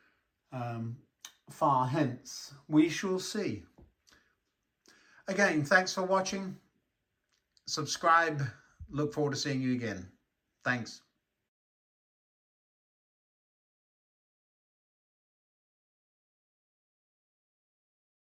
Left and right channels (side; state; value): both; identical; correlation 1.00